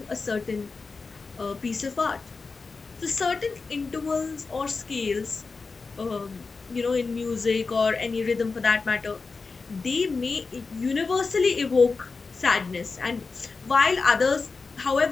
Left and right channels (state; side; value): quieter; right; 4.3 dB